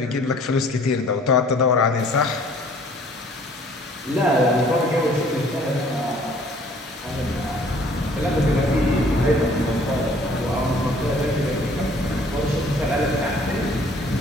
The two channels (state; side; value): normal; both; correlation 0.56